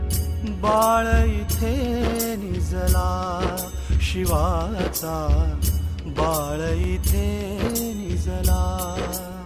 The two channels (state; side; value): identical; both; correlation 1.00